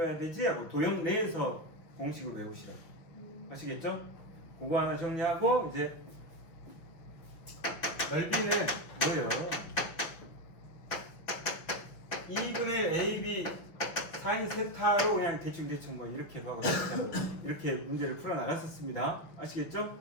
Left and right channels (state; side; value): late; right; 5.9 ms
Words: 되지? 하고 도형 내에서 공식을 외우시라고. 아시겠죠? 그거 하나 정리하고 이제 넓이는 뭐예요? 2분의 AB 사인 세타로 그냥 대충 뭐 이렇게 하고 이렇게 문제를 풀어 나갔었습니다. 아시겠죠?